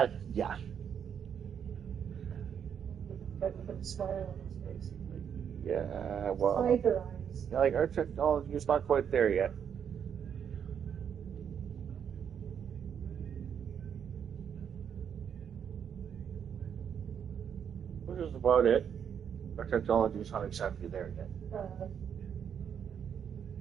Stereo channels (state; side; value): quieter; left; 8.0 dB